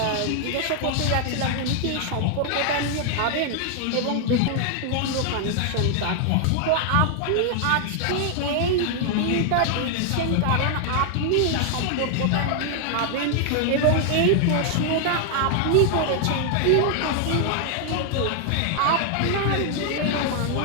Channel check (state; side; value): different; both; correlation 0.00